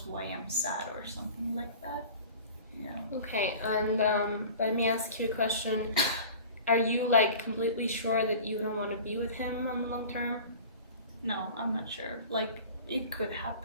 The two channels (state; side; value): inverted; both; correlation -0.40